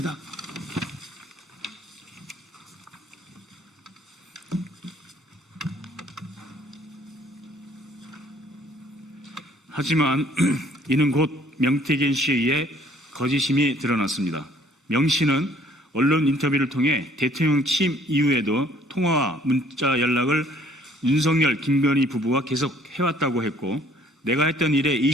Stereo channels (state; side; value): normal; both; correlation 0.58